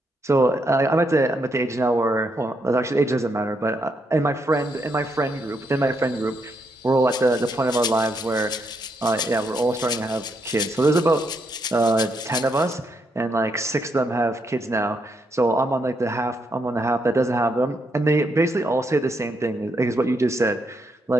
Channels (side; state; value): both; normal; correlation 0.78